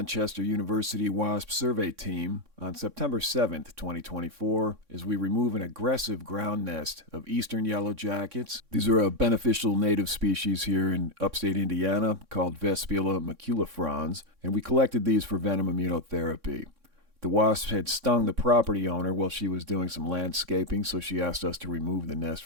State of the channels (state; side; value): late; left; 3.6 ms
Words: University Wasp Survey Team on September 7th, 2024, as we remove an aggressive ground nest of Eastern Yellowjackets. These are a beneficial native species here in upstate Indiana called Vespula maculifrons, and we collected these for Venom Immunotherapy. The wasps had stung the property owner while she was doing some landscaping, so she asked us to remove the nest